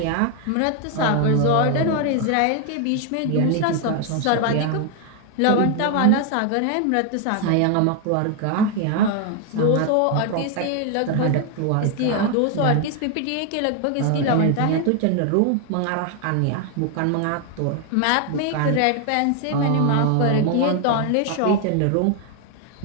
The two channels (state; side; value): different; both; correlation 0.01